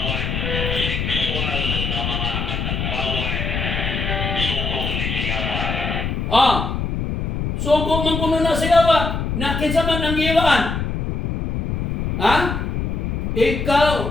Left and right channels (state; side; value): noise; left; rumble, 2 dB below the sound